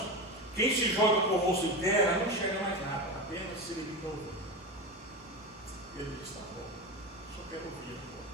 quem se joga com o rosto em terra não enxerga mais nada, apenas se limita a ouvir. Ele diz: tá bom, só quero ouvir,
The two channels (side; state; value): both; normal; correlation 0.21